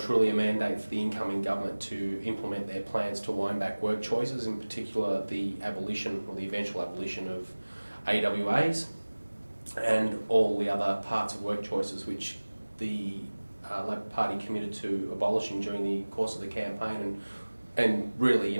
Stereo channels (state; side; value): inverted; both; correlation -1.00